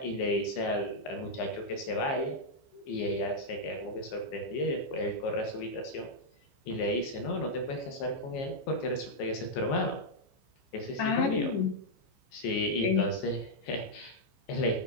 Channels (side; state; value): right; late; 15 ms